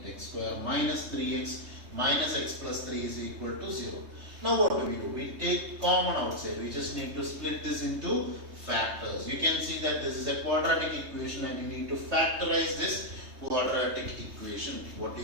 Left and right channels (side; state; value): left; late; 3.2 ms